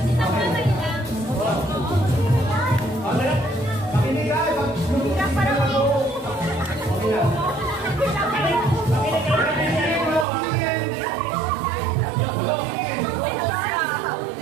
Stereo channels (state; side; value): drops out; left; at 10.2 s